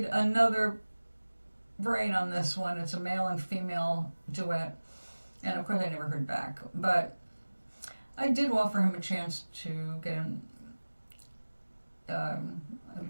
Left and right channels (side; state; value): both; inverted; correlation -1.00